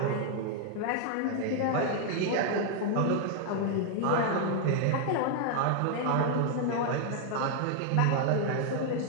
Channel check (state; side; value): different; both; correlation 0.00